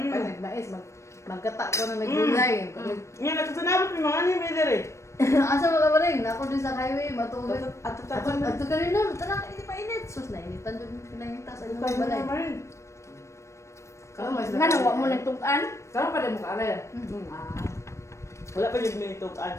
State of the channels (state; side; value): late; right; 0.14 ms